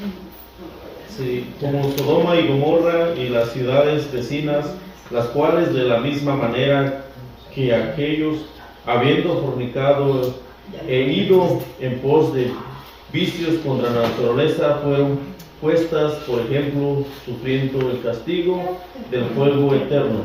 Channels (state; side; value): identical; both; correlation 1.00